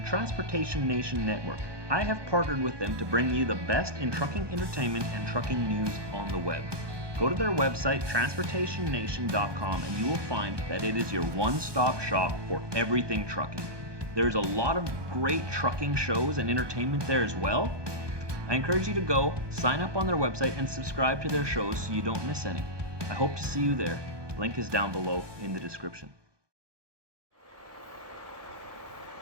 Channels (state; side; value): late; left; 1.2 ms